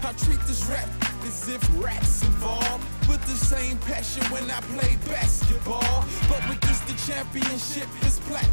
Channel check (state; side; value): inverted; both; correlation -1.00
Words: I treat this rap as if rap's involved, with the same passion when I play basketball. But with this the championship is